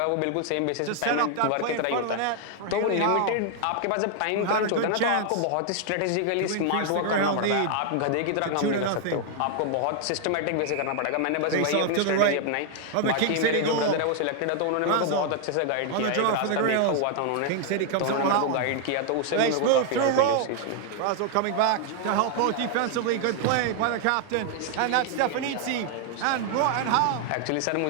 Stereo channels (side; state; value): both; different; correlation 0.00